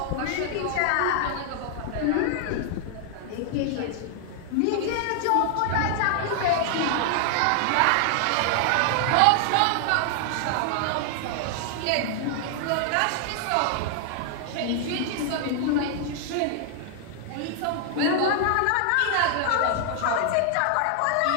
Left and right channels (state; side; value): different; both; correlation 0.00